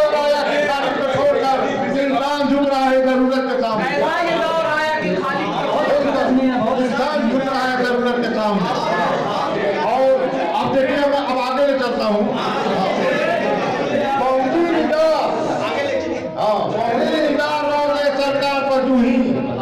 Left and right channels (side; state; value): both; identical; correlation 1.00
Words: आया कि खाली को छोड़कर इंसान झुक रहा है जरूरत के सामने। इंसान झुक रहा है जरूरत के सामने। और अब देखिए, अब आगे ले चलता हूँ। पहुंची निगाह रौदे सरकार पर जूही,